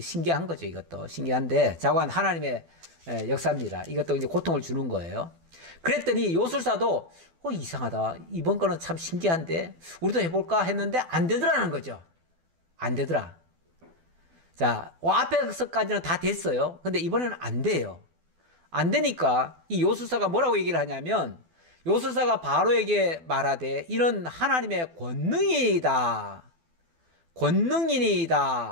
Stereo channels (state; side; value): late; left; 12 ms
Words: 거죠. 이것도 신기한데 자관 하나님의 역사입니다. 이것도 이제 고통을 주는 거예요. 그랬더니 요술사도 이상하다. 이번 거는 참 신기한데 우리도 해볼까 했는데 안 되더라는 거죠. 안 되더라. 자, 앞에서까지는 다 됐어요. 근데 이번에는 안 돼요. 안 되니까 이 요술사가 뭐라고 얘기를 하냐면 요술사가 바로에게 말하되 이는 하나님의 권능이다.